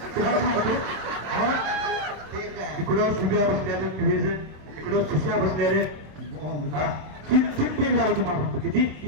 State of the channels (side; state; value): left; late; 26 ms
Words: सांगतो हा? ठीक आहे. इकडं सुब्या बसल्याले क्रिएजन इकडं सुश्या बसल्याले हा. तीन पेन झालं तुम्हाला सांगतो किती